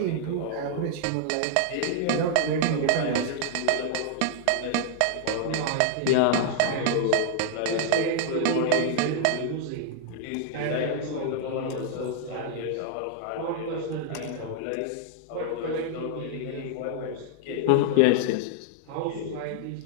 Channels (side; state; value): both; different; correlation 0.00